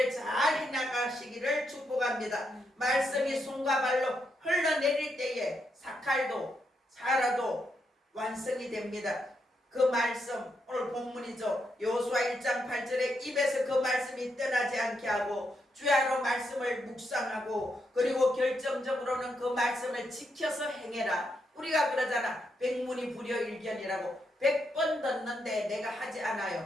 잘 해나가시기를 축복합니다. 말씀이 손과 발로 흘러내릴 때에 사칼도 살아도 완성이 됩니다. 그 말씀 오늘 본문이죠. 여호수아 1장 8절에 입에서 그 말씀이 떠나지 않게 하고 주야로 말씀을 묵상하고 그리고 결정적으로는 그 말씀을 지켜서 행해라. 우리가 그러잖아. 백문이 불여일견이라고. 100번 듣는데 내가 하지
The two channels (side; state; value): both; normal; correlation 0.81